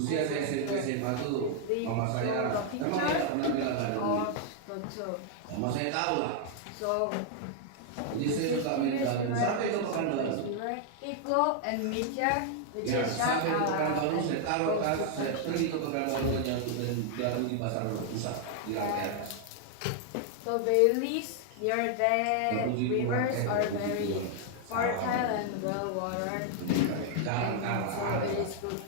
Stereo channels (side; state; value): both; different; correlation 0.00